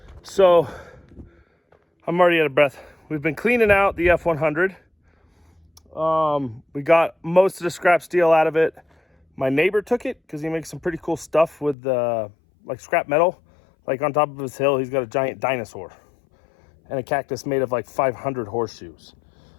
So I'm already out of breath. We've been cleaning out the F100. We got most of the scrap steel out of it. My neighbor took it because he makes some pretty cool stuff with like scrap metal. Like on top of his hill, he's got a giant dinosaur and a cactus made of like 500 horseshoes.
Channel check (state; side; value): drops out; right; at 11.8 s